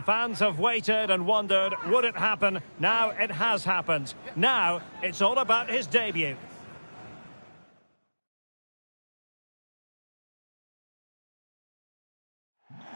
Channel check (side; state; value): both; inverted; correlation -1.00